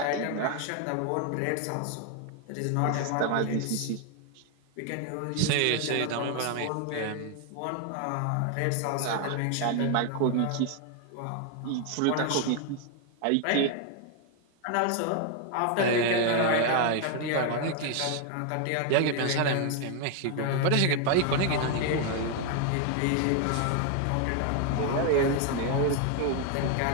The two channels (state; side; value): different; both; correlation 0.01